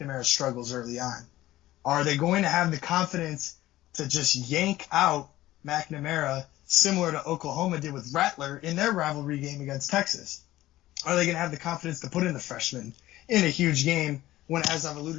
struggles early on? Are they going to have the confidence to just yank out McNamara, similar to Oklahoma did with Rattler in their rivalry game against Texas? Are they going to have the confidence to put in the freshman in a huge game when, as I've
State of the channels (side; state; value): right; quieter; 15.7 dB